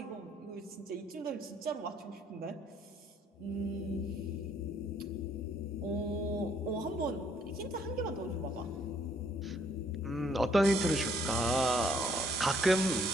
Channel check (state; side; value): normal; both; correlation 0.65